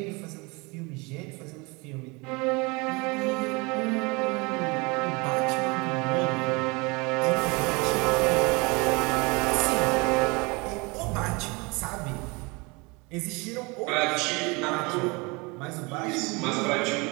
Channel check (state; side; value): quieter; left; 27.2 dB